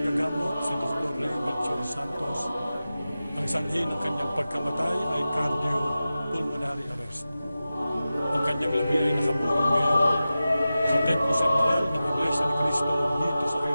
si Dr. Ray Melchor Santos, ang sanhi ng kanyang pagkamatay ay cardiopulmonary arrest. Ang kanyang labi ay nakaburol ngayon sa Templo Central ng Iglesia ni Cristo dito sa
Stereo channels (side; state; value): both; inverted; correlation -0.94